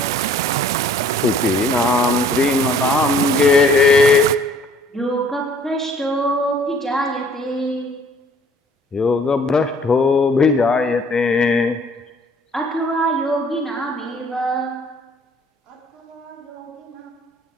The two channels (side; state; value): both; normal; correlation 0.56